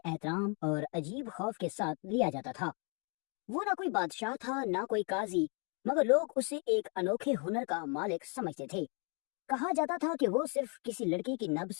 और अजीब खौफ के साथ लिया जाता था। वो ना कोई बादशाह था ना कोई काजी, मगर लोग उसे एक अनोखे हुनर का मालिक समझते थे। कहा जाता था कि वो सिर्फ किसी लड़की की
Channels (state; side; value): quieter; right; 36.9 dB